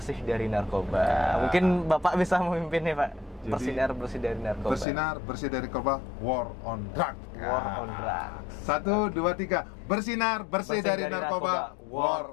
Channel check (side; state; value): right; drops out; at 4.9 s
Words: dari narkoba. Mungkin Bapak bisa memimpinnya Pak. Bersinar bersih dari narkoba. Bersinar bersih dari narkoba. War on drug. War on drug. 1, 2, 3. Bersinar bersih dari narkoba. War